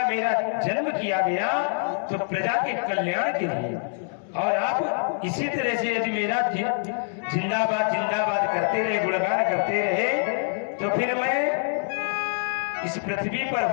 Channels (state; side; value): silent; right; 61 dB below the other